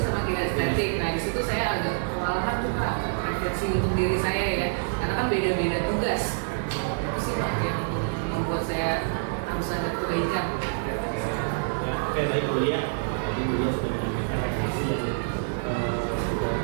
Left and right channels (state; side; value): silent; left; digital silence